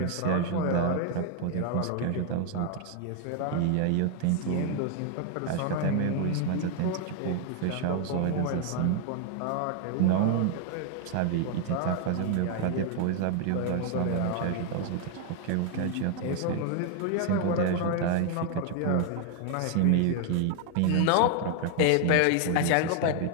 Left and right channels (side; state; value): both; different; correlation 0.00